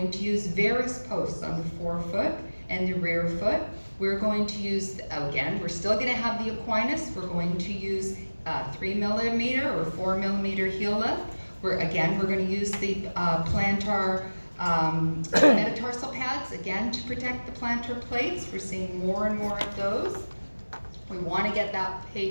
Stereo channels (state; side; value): inverted; both; correlation -1.00